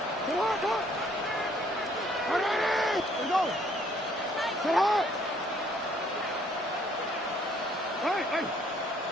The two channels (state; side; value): normal; both; correlation 0.63